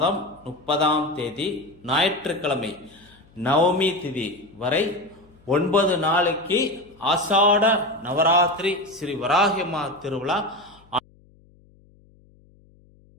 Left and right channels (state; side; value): noise; left; hum, 29 dB below the sound